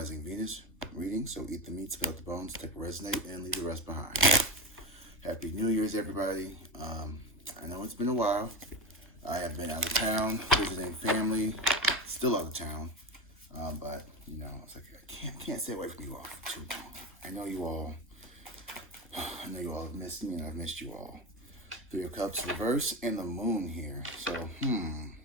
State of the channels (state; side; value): normal; both; correlation 0.21